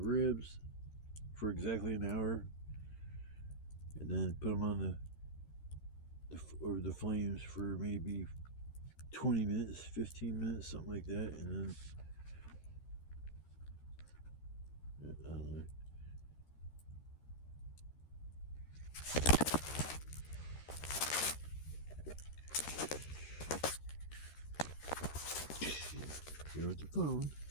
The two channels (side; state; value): right; late; 13 ms